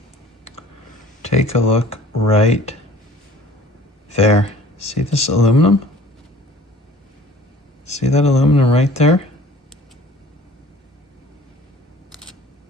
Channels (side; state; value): both; normal; correlation 0.49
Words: Take a look right there. See this aluminum? See that aluminum right there?